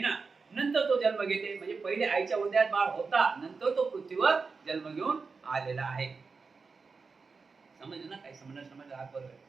नंतर तो जन्म घेते, म्हणजे पहिले आईच्या उदयात बाळ होता, नंतर तो पृथ्वीवर जन्म घेऊन आलेला आहे. समजलं ना? काही समजलं हात बरोबर.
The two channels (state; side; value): quieter; left; 4.7 dB